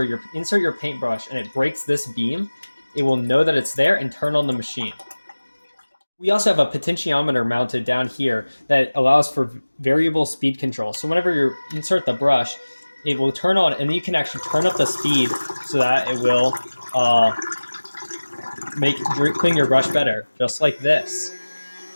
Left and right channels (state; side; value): inverted; both; correlation -1.00